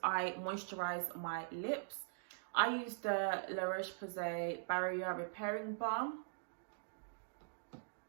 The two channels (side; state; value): left; silent; digital silence